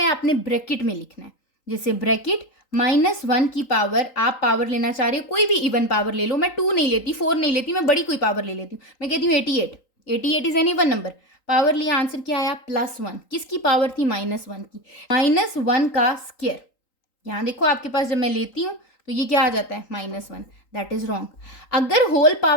आपने ब्रैकेट में लिखना है, जैसे ब्रैकेट -1 की पावर, आप पावर लेना चाह रहे हो, कोई भी इवन पावर ले लो, मैं 2 नहीं लेती, 4 नहीं लेती, मैं बड़ी कोई पावर ले लेती हूँ, मैं कहती हूँ 88। 88 is an even number, power लिया, आंसर क्या आया +1। किसकी पावर थी? -1 की। -1 का स्क्वायर, यहाँ देखो आपके पास जब मैं लेती हूँ तो ये क्या आ जाता है? -1। That is wrong. अगर होल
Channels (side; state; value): right; late; 3.8 ms